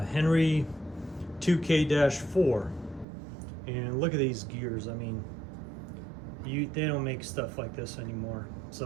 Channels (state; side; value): drops out; left; at 3.1 s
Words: Henry 2K-4. And look at these gears. I mean, they don't make stuff like this anymore.